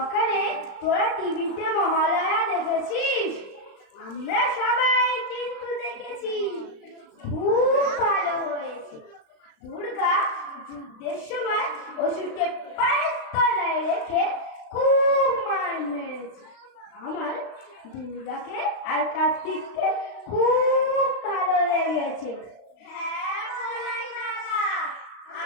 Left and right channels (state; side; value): late; right; 35 ms